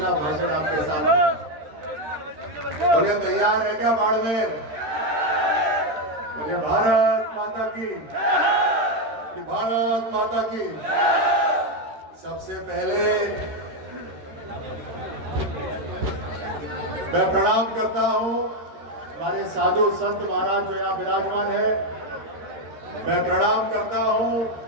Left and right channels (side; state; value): left; late; 13 ms